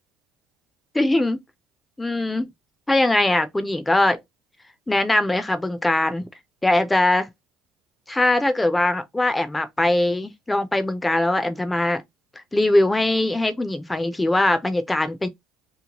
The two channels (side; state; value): both; normal; correlation 0.96